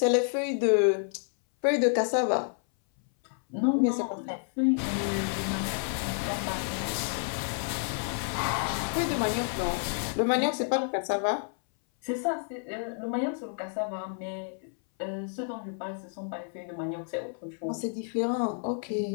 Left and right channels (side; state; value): right; silent; 58 dB below the other